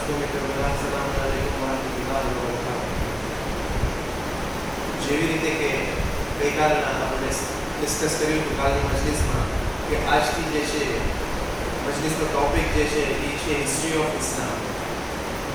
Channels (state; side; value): identical; both; correlation 1.00